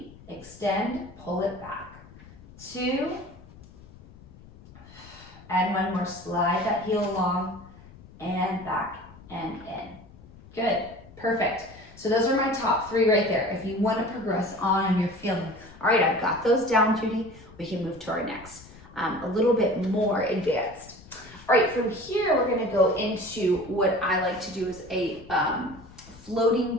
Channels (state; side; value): noise; left; rumble, 21 dB below the sound